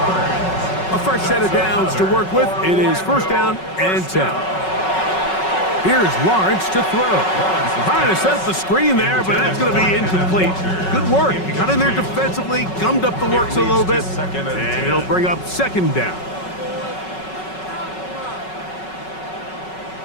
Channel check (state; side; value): late; right; 5.4 ms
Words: A fresh set of downs to work with. It is 1st down and 10. Here's Lawrence to throw. Trying to set up the screen there, but that's going to be incomplete. Good work. He got in there defensively, gummed up the works a little bit, and it'll bring up 2nd down.